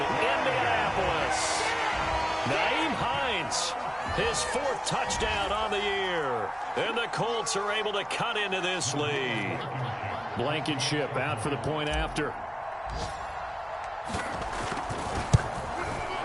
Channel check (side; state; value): both; identical; correlation 1.00